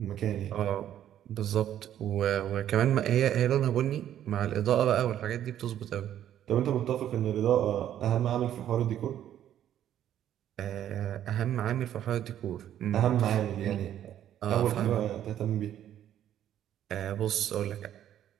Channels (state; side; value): quieter; left; 11.0 dB